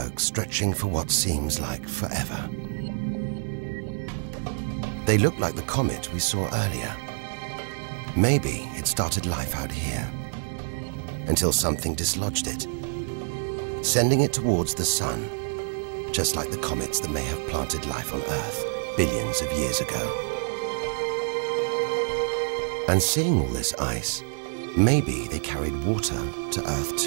stretching for what seems like forever. They look like the comet we saw earlier. Maybe it started life out here, until something dislodged it, sending it towards the Sun, just like the comets that may have planted life on Earth billions of years ago. And seeing all this ice, maybe they carried water to Earth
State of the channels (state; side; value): silent; left; 60 dB below the other